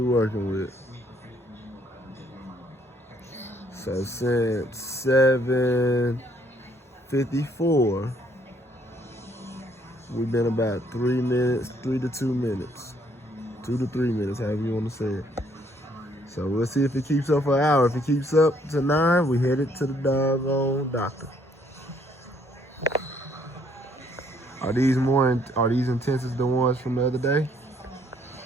working with. So since 7:54, we've been about 3 minutes, 3 to 2 minutes, 2 to 3 minutes, however you want to say it. So we'll see if it keeps up for an hour. If it keeps up to 9, we headed to the doggone doctor. Are these intense as the ones from the other day?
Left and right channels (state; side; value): normal; both; correlation 0.66